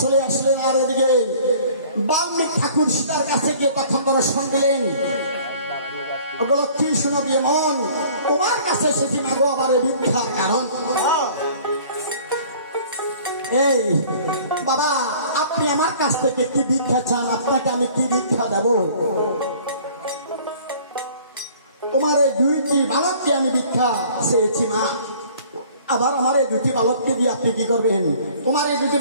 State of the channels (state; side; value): inverted; both; correlation -0.51